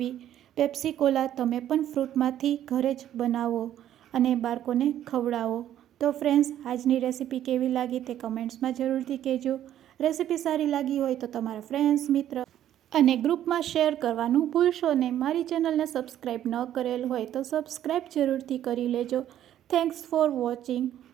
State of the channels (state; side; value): quieter; left; 11.5 dB